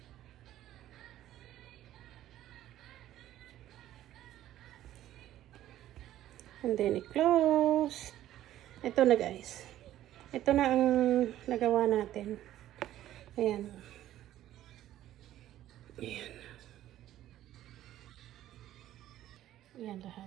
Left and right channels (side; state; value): left; quieter; 13.1 dB